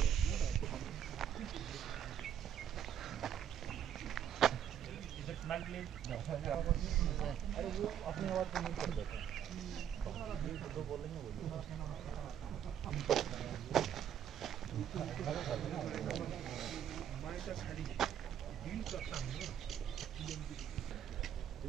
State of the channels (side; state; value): left; quieter; 9.4 dB